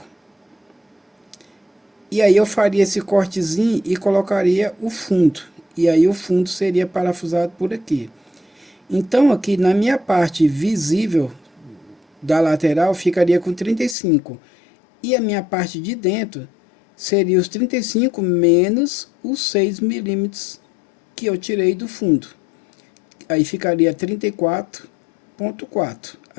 E aí eu faria esse cortezinho e colocaria o fundo. E aí o fundo seria parafusado por aqui. Então aqui na minha parte visível da lateral ficaria com 35. E a minha parte de dentro seria os 35 menos os 6 milímetros que eu tirei do fundo. Aí ficaria 34,4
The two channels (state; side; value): drops out; right; at 14.0 s